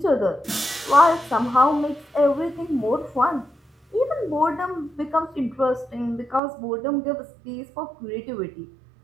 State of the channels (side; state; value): left; drops out; at 6.4 s